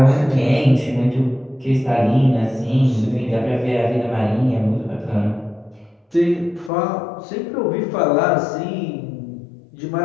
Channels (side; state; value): right; drops out; at 6.7 s